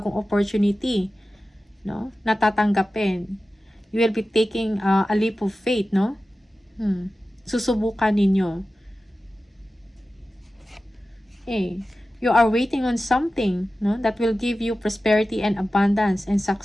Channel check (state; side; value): normal; both; correlation 0.95